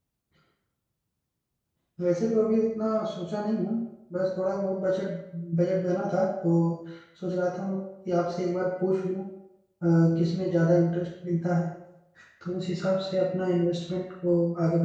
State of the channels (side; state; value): both; identical; correlation 1.00